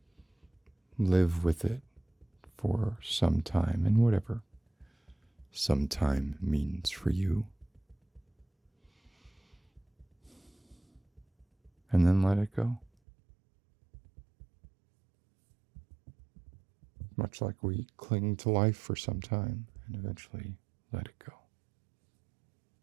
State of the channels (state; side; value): drops out; left; at 12.9 s